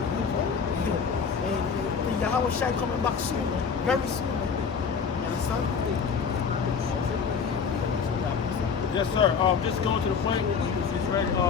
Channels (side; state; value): right; quieter; 6.0 dB